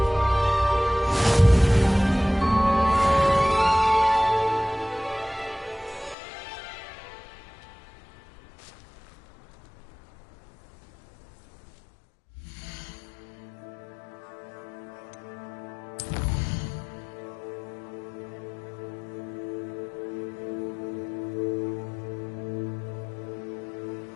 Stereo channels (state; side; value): drops out; right; at 6.2 s